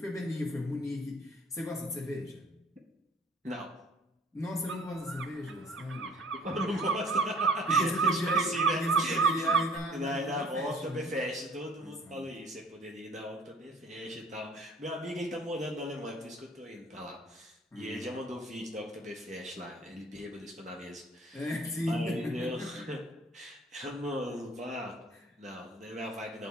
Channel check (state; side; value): normal; both; correlation 0.53